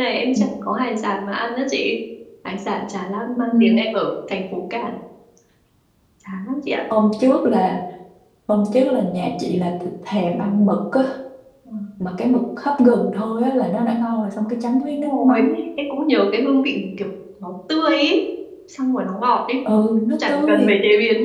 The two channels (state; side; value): identical; both; correlation 1.00